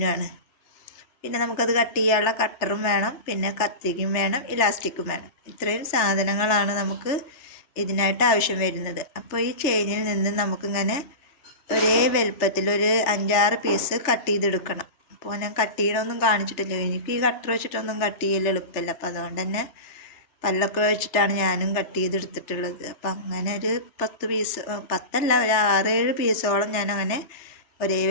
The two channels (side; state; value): right; late; 3.3 ms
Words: പിന്നെ നമുക്കത് കട്ട് ചെയ്യാനുള്ള കട്ടറും വേണം, പിന്നെ കത്തിക്കും വേണം, ഇലാസ്റ്റിക്കും വേണം. ഇത്രയും സാധനങ്ങളാണ് നമുക്ക് ഇതിനായിട്ട് ആവശ്യം വരുന്നത്. അപ്പോൾ ഈ ചെയിനിൽ നിന്ന് നമുക്കിങ്ങനെ ഒരേ വലുപ്പത്തിൽ ഒരു 5-6 പീസ് കട്ട് ചെയ്തെടുക്കണം. അപ്പോൾ ഞാൻ കട്ട് ചെയ്യണമൊന്നും കാണിച്ചിട്ടില്ല, എനിക്ക് ഈ കട്ടർ വെച്ചിട്ടൊന്നും കട്ട് ചെയ്യൽ എളുപ്പമില്ല. അപ്പോൾ അതുകൊണ്ട് തന്നെ പല്ലൊക്കെ വെച്ചിട്ടാണ് ഞാനും കട്ട് ചെയ്തെടുത്തിട്ടുള്ളത്. അപ്പം അങ്ങനെ ഒരു 10 പീസ്, 10 ഒരു 6-7 പീസോളം ഞാൻ അങ്ങനെ ഒരേ